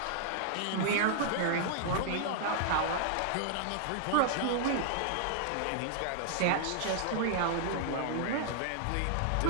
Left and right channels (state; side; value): different; both; correlation 0.00